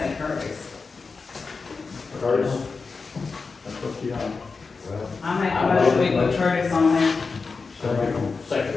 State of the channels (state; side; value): quieter; right; 4.5 dB